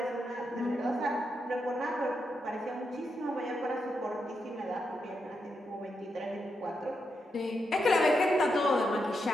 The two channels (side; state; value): both; normal; correlation 0.84